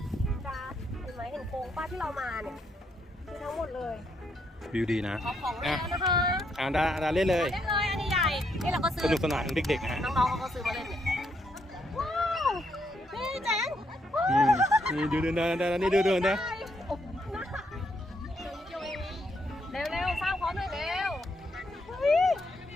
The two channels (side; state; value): both; normal; correlation 0.76